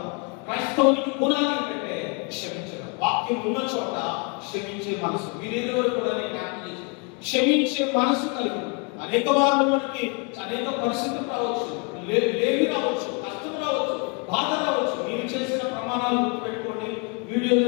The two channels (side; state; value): right; quieter; 32.8 dB